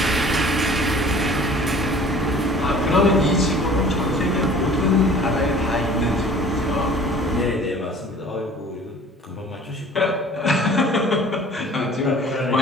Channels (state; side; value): normal; both; correlation 0.48